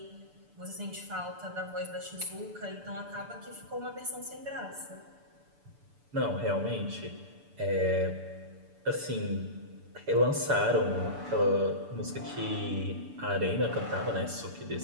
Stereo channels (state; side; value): late; left; 6.9 ms